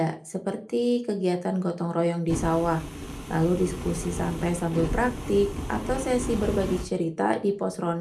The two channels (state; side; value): identical; both; correlation 1.00